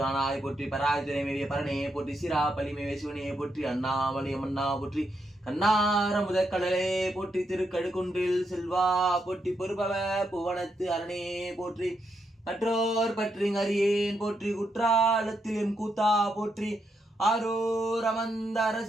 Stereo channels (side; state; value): both; normal; correlation 0.81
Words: ஆனாய் போற்றி பராஜனை மேவிய பரணையை போற்றி சிரா பலி மேவிய சிவனையை போற்றி அண்ணாமலை அம்மன்னா போற்றி கண்ணார முதற்கடலே போற்றி திருக்கடுக்குன்றில் செல்வா போற்றி பொறுபவ புவனத்து அரணே போற்றி மற்றோர் பற்றி அறியேன் போற்றி குற்றாலத்தில் எம் கூத்தா போற்றி ஆரூர் அமர்ந்த